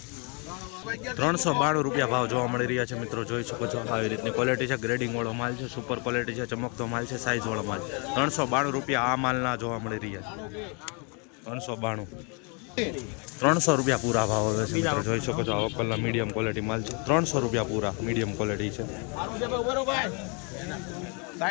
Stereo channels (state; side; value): quieter; right; 34.1 dB